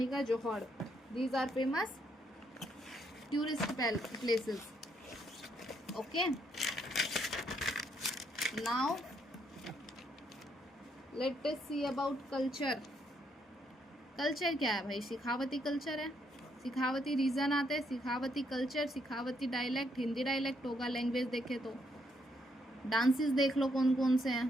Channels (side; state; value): both; normal; correlation 0.74